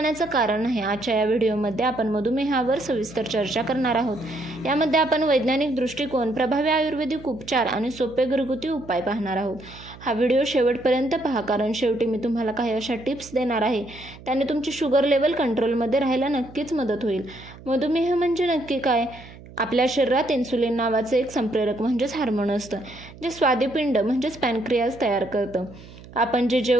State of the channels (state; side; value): noise; right; hum, 19 dB below the sound